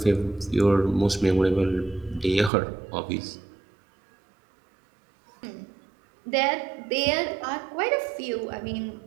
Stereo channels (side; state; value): left; drops out; at 2.5 s